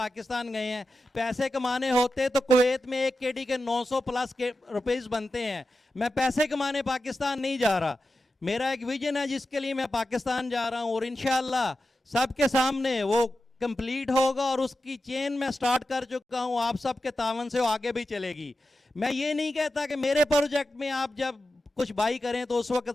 गए हैं। पैसे कमाने होते तो कुवैत में एक केडी के 900 प्लस के रुपीस बनते हैं। मैं पैसे कमाने पाकिस्तान नहीं जा रहा, मेरा एक विजन है जिसके लिए मैं पाकिस्तान जा रहा हूँ और इंशाल्लाह सबके सामने वो कंप्लीट होगा और उसकी चेन मैं स्टार्ट कर चुका हूँ। आप सबके तावन से वो आगे भी चलेगी। मैं ये नहीं कहता कि मेरे प्रोजेक्ट में आप जब कुछ बाई करें तो उस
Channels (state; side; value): normal; both; correlation 0.92